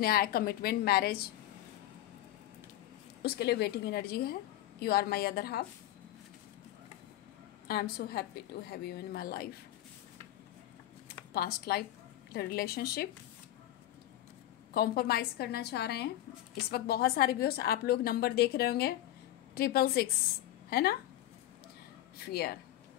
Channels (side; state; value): right; quieter; 13.7 dB